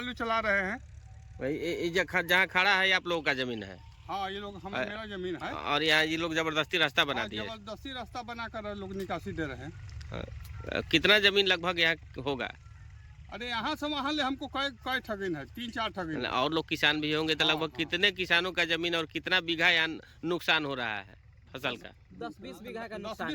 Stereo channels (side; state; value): both; identical; correlation 1.00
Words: चला रहे हैं। भाई, जहाँ खड़ा है ये आप लोगों का जमीन है? हाँ, ये लोग मेरा जमीन है, और यहाँ ये लोग जबरदस्ती रास्ता बना दिए? जबरदस्ती रास्ता बनाकर लोग निकासी दे रहे हैं। कितना जमीन लगभग यहाँ होगा? अरे यहाँ से वहाँ ले हमको कई ठगिन है, 3-4 ठगिन। और लोग किसान भी होंगे, तो लगभग कितने किसानों का जमीन और कितना बीघा यहाँ नुकसान हो रहा है फसल का? 10-20 बीघा का नुकसान